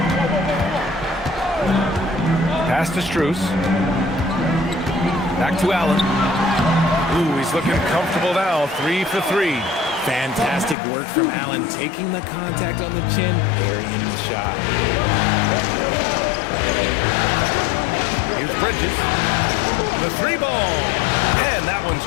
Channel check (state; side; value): drops out; right; at 10.8 s